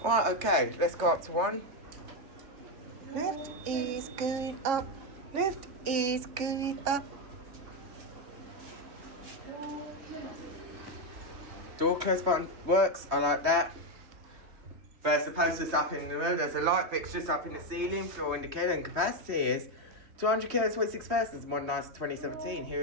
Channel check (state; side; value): late; left; 3.1 ms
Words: Right, okay, let's go up to 1. Lift is going up. Lift is going up. Door close button works, I like that. There's the posters up in the room, there's a light fixtures up in the ceiling, floor indicator, and capacity is 200 kilos, 26 persons, modernised 2017. Here